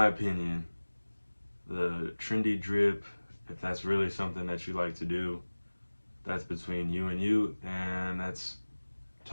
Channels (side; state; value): both; inverted; correlation -1.00